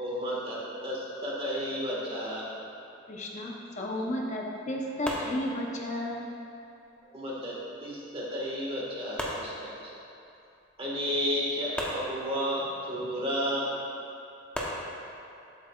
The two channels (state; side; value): normal; both; correlation 0.27